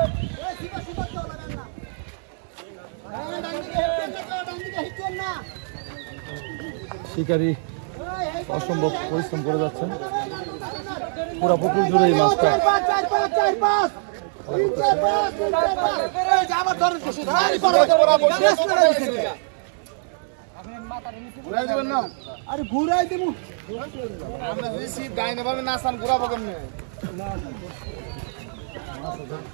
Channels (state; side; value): silent; left; digital silence